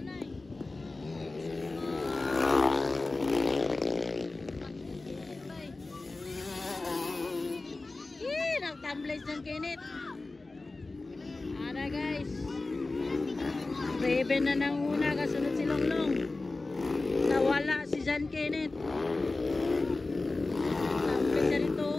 Kenneth ba eh? Nagtamblay John Kenneth. Ara guys. Raven na ng una, kasunod si Longlong. Nawala si John Kenneth. Sabi siya rito,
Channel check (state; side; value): quieter; right; 3.3 dB